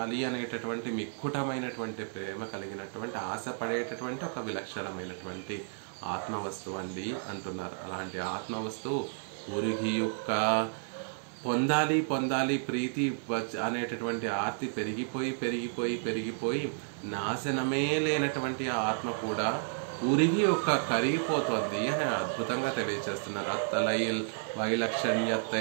అనేటటువంటి మిక్కుటమైనటువంటి ప్రేమ కలిగినటువంటి ఆశపడేటటువంటి ఒక విలక్షణమైనటువంటి ఆత్మవస్తువు అండి అంటున్నారు. అలాంటి ఆత్మవస్తువు ఉరిగి యొక్క పొందాలి ప్రీతి అనేటటువంటి ఆర్తి పెరిగిపోయి నాశనమే లేనటువంటి ఆత్మ కూడా ఉరిగి యొక్క కరిగిపోతోంది అని అద్భుతంగా తెలియచేస్తున్నారు. అత్తలైల్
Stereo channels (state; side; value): silent; left; 57 dB below the other